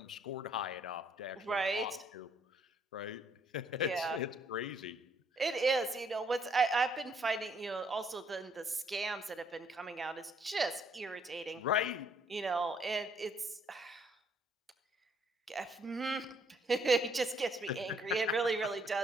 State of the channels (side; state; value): both; normal; correlation 0.67